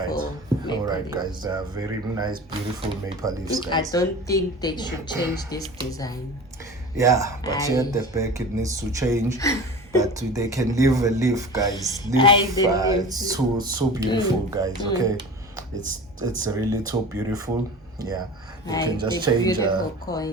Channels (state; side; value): normal; both; correlation 0.36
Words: right, guys. They are very nice, beautiful maple leaves, guys. I don't think they should change this design. Yeah, but here at the back it needs to change. But they can leave a leaf, guys. It's so beautiful, guys. Okay, it's really so beautiful. Yeah, they can just change. Beautiful